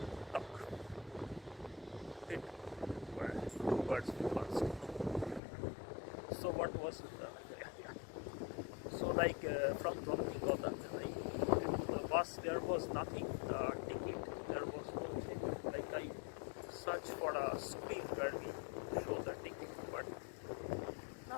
talk. It were 2 birds with 1 stone. So what was it? So like from Stockholm Gothenburg, the bus, there was nothing, ticket, there was no thing. Like I searched for a screen where we show the ticket, but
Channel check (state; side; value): drops out; right; at 5.4 s